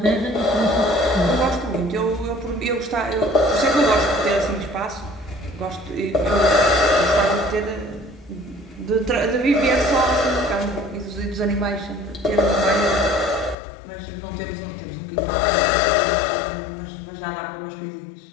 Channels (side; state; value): right; drops out; at 13.6 s